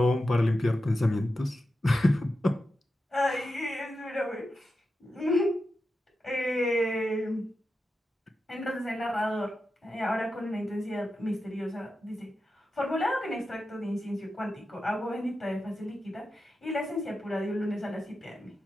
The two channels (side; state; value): both; normal; correlation 0.90